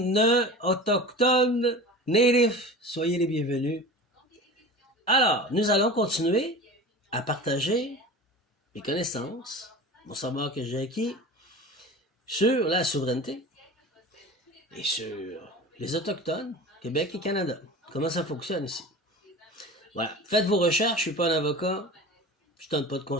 natifs, soyez les bienvenus. Alors, nous allons continuer à partager mes connaissances, mon savoir que j'ai acquis sur la souveraineté et sur les autochtones, Québec et Canada. Comment ça fonctionne ici? Voilà, faites vos recherches, je suis pas un avocat, je donne pas de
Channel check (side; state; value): both; normal; correlation 0.35